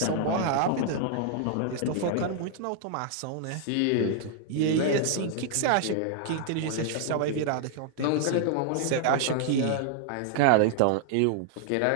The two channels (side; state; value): both; different; correlation 0.00